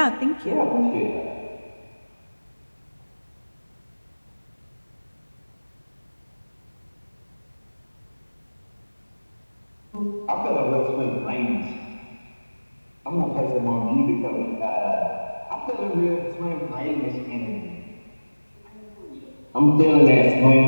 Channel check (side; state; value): both; inverted; correlation -1.00